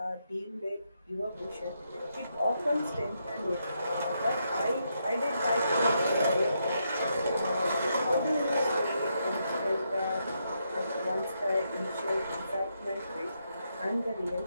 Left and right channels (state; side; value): inverted; both; correlation -0.80